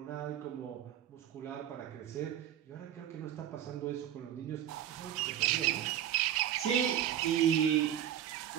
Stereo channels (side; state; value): left; quieter; 10.8 dB